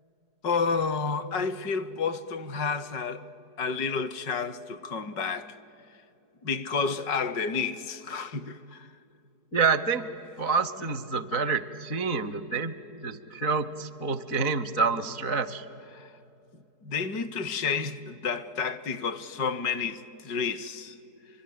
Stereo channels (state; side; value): late; right; 4.7 ms